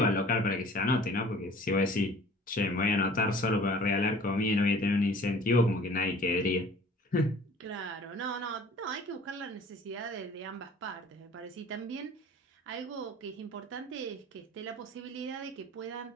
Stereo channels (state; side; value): normal; both; correlation 0.48